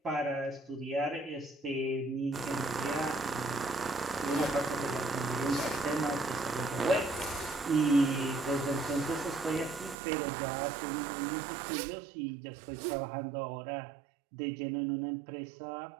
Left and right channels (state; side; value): drops out; left; at 10.0 s